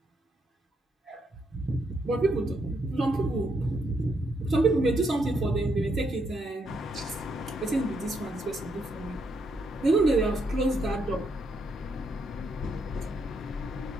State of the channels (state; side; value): normal; both; correlation 0.76